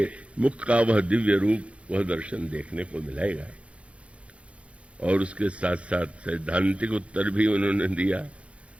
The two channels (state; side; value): late; left; 0.062 ms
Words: मुख का वह दिव्य रूप, वह दर्शन देखने को मिलेगा। और उसके साथ साथ सैद्धांतिक उत्तर भी उन्होंने दिया।